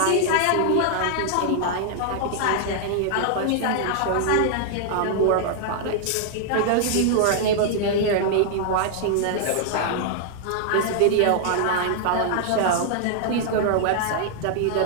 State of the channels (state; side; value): different; both; correlation -0.01